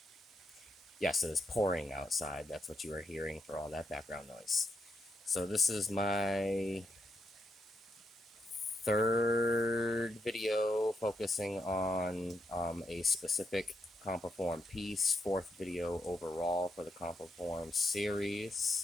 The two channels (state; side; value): normal; both; correlation 0.80